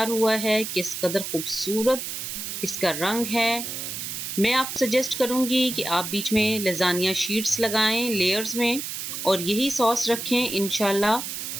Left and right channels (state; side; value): noise; right; hiss, 6 dB below the sound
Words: हुआ है। किस कदर खूबसूरत इसका रंग है। मैं आपको सजेस्ट करूंगी कि आप बीच में लेज़ानिया शीट्स लगाएं लेयर्स में और यही सॉस रखें। इंशाल्लाह